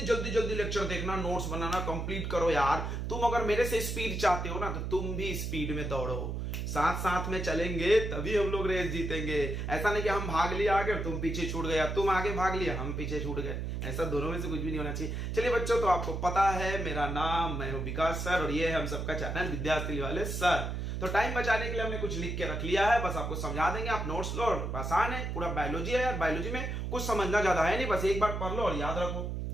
जल्दी जल्दी लेक्चर देखना, नोट्स बनाना कंप्लीट करो यार। तुम अगर मेरे से स्पीड चाहते हो ना तो तुम भी स्पीड में दौड़ो, साथ साथ में चलेंगे तभी हम लोग रेस जीतेंगे। ऐसा नहीं कि हम भाग लिया आगे और तुम पीछे छूट गए, तुम आगे भाग लिया हम पीछे छूट गए। ऐसा दोनों में से कुछ भी नहीं होना चाहिए। चलिए बच्चों, तो आपको पता है मेरा नाम, मैं हूं विकास सर और ये है हम सबका चैनल विद्यार्थी वाले सर। तो टाइम बचाने के लिए हमने कुछ लिख के रख लिया है, बस आपको समझा देंगे, आप नोट्स लो। आसान है, पूरा बायोलॉजी है यार, बायोलॉजी में कुछ समझना ज्यादा है नहीं, बस एक बार पढ़ लो और याद रखो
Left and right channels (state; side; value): noise; right; hum, 3 dB below the sound